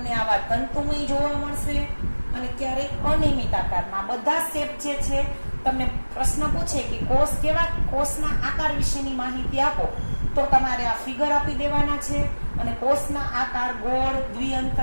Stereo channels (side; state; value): both; inverted; correlation -1.00